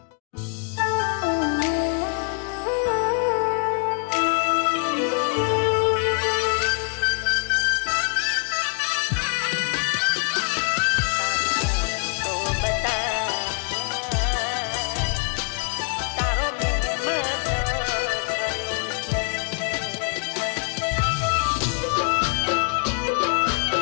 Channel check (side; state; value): right; quieter; 39.0 dB